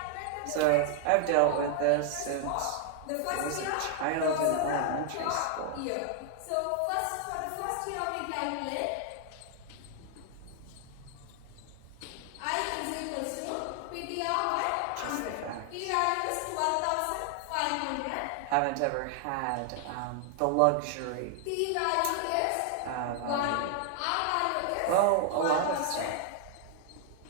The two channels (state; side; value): different; both; correlation 0.00